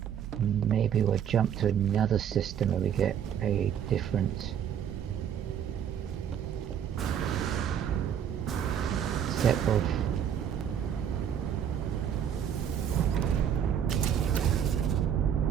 Maybe we'll jump to another system where we get a different set of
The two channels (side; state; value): left; quieter; 8.9 dB